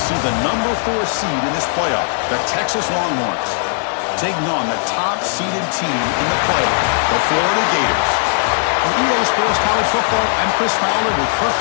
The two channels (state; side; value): silent; right; 58 dB below the other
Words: see the number 4 seed in this playoff, the Texas Longhorns, taking on the top-seeded team in the playoff, the Florida Gators. For EA Sports College Football, I'm Chris Fowler with Kirk